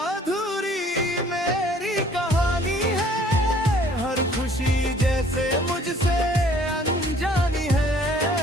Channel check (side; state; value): both; normal; correlation 0.57